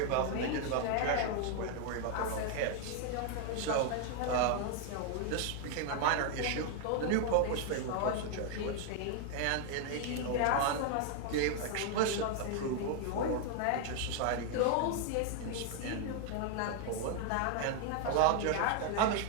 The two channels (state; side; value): different; both; correlation 0.00